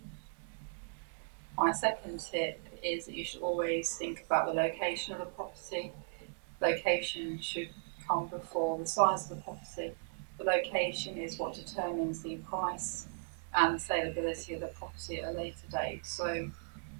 My second tip is that you should always think about the location of the property. Location should come before the size of the property. The location is what determines the price and the saleability of the property at a later date. So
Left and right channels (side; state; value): left; silent; digital silence